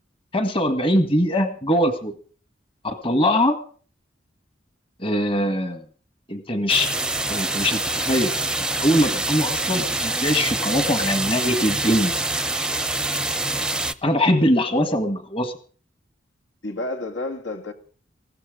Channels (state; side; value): normal; both; correlation 0.52